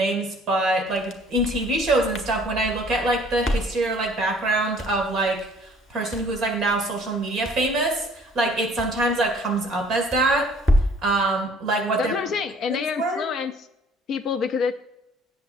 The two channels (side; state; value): both; normal; correlation 0.55